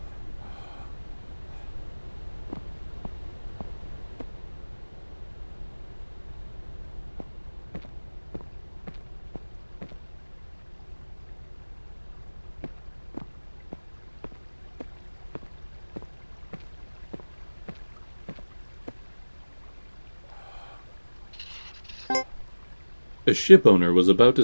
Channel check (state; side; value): inverted; both; correlation -1.00